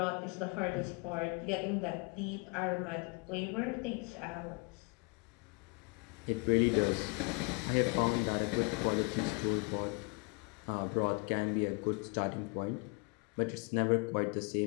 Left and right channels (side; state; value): right; quieter; 32.6 dB